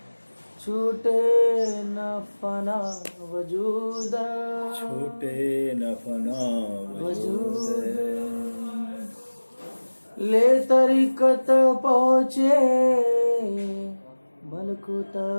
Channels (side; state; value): both; inverted; correlation -1.00